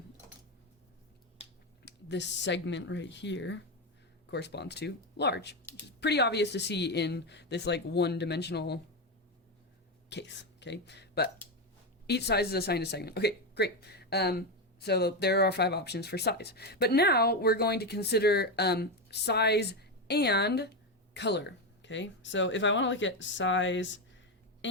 this segment right here corresponds to large, which is pretty obvious to see in this like one-dimensional case, okay? But each size is assigned a segment. Okay, great. So there are 5 options for size. But now we're going to consider size and color, okay? So if I want to look at size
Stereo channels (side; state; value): both; normal; correlation 0.11